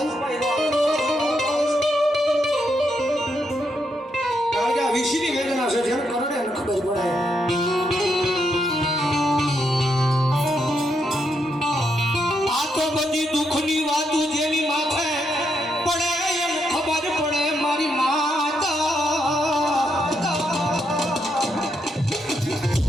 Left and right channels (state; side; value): normal; both; correlation 0.80